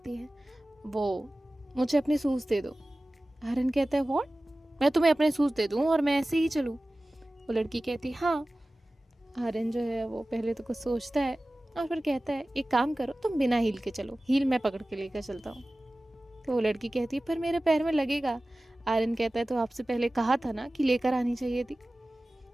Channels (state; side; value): normal; both; correlation 0.97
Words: है वो मुझे अपने शूज़ दे दो। आर्यन कहता है व्हाट? मैं तुम्हें अपने शूज़ दे दूँ और मैं ऐसे ही चलूँ? वो लड़की कहती है हाँ। आर्यन जो है वो पहले तो कुछ सोचता है और फिर कहता है एक काम करो तुम बिना हील के चलो, हील मैं पकड़ के लेकर चलता हूँ। तो वो लड़की कहती है पर मेरे पैर में लगेगा। आर्यन कहता है तो आपसे पहले कहा था ना कि लेकर आनी चाहिए थी।